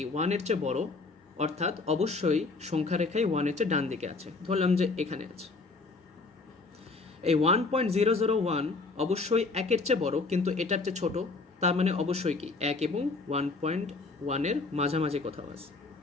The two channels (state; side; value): quieter; right; 3.8 dB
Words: 1-এর চেয়ে বড়, অর্থাৎ অবশ্যই সংখ্যা রেখায় 1-এর চেয়ে ডান দিকে আছে। ধরলাম যে এখানে আছে। এই 1.001 অবশ্যই 1-এর চেয়ে বড়, কিন্তু এটার চেয়ে ছোট, তার মানে অবশ্যই কি 1 এবং 1.1-এর মাঝামাঝি কোথাও আছে।